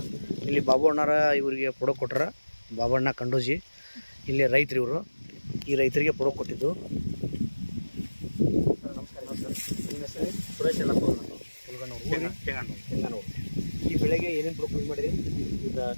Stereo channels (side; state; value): both; inverted; correlation -1.00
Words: ಇಲ್ಲಿ ಬಾಬು ಅಣ್ಣಾರ ಇವರಿಗೆ ಪ್ರೊಡಕ್ಟ್ ಕೊಟ್ಟಾರ, ಬಾಬಣ್ಣ ಕಂಡೋಜಿ. ಇಲ್ಲಿ ರೈತರು ಇವರು, ಈ ರೈತರಿಗೆ ಪ್ರೊಡಕ್ಟ್ ಕೊಟ್ಟಿದ್ದು. ಸುರೇಶ್ ಎಲ್ಲಪ್ಪ ಕೆಂಗಾನೂರು. ಈ ಬೆಳೆಗೆ ಏನೇನು ಪ್ರೊಡಕ್ಟ್ ಯೂಸ್ ಮಾಡಿರಿ? ಈಗ